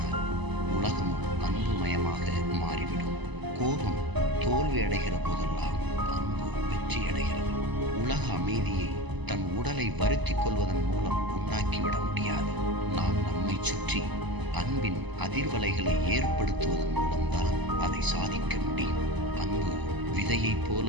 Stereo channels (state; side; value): late; left; 1.0 ms